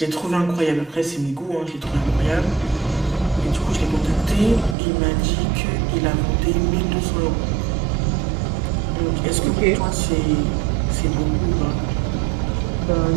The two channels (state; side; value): drops out; left; at 4.8 s